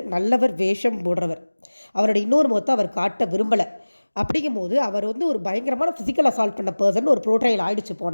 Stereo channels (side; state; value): both; inverted; correlation -1.00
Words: நல்லவர், வேஷம் போடுறவர். அவரோட இன்னொரு முகத்தை அவர் காட்ட விரும்பலை. அப்படிங்கும்போது அவர் வந்து ஒரு பயங்கரமான ஃபிசிக்கல் அசால்ட் பண்ண பர்சன் ஒரு ப்ரோட்ரைல் ஆகிடுச்சு